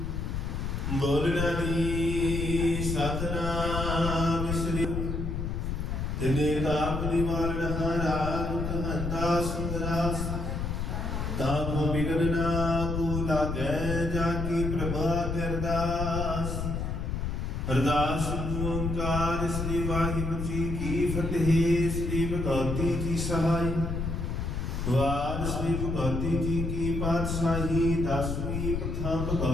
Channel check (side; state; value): left; noise; rumble, 2 dB below the sound